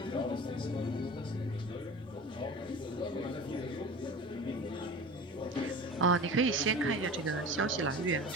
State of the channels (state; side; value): normal; both; correlation 0.35